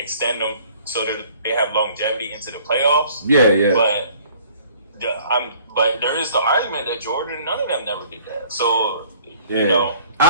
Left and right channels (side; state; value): both; inverted; correlation -0.55